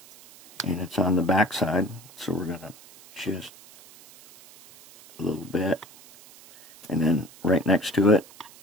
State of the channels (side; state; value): right; noise; hiss, 22 dB below the sound